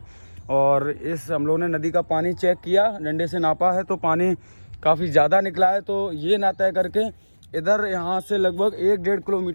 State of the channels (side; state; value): both; inverted; correlation -1.00